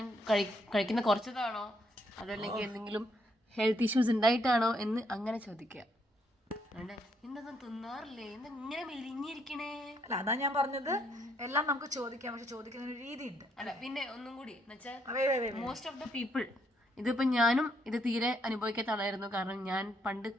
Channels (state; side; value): normal; both; correlation 0.73